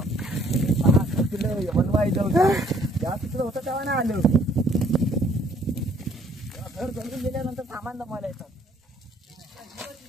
होतं तेव्हा नाही आलं. घर जमून गेल्यानंतर सामान जमायला येतात.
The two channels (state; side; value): normal; both; correlation 0.62